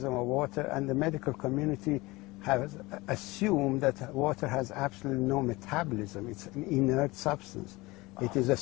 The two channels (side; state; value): right; quieter; 21.9 dB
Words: of water, and the medical community has assumed that water has absolutely no metabolism. It's an inert substance. It is a